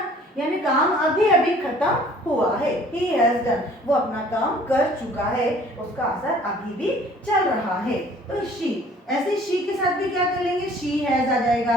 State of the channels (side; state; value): both; normal; correlation 0.53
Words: यानी काम अभी अभी खत्म हुआ है, he has done, वो अपना काम कर चुका है, उसका असर अभी भी चल रहा है। तो she ऐसे शी के साथ भी क्या कर लेंगे, शी हैज आ जाएगा,